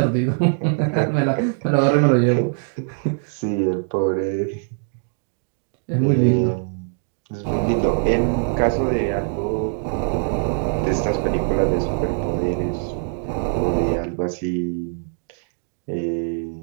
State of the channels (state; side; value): silent; left; 61 dB below the other